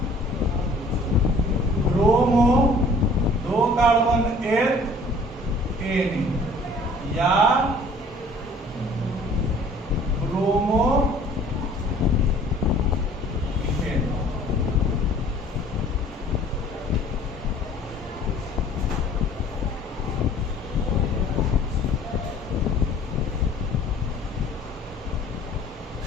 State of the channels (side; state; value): both; normal; correlation 0.52